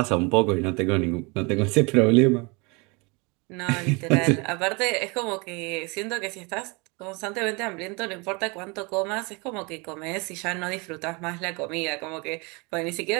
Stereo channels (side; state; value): left; quieter; 28.8 dB